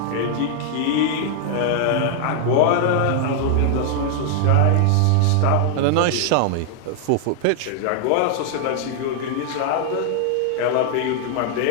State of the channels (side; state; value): both; different; correlation 0.00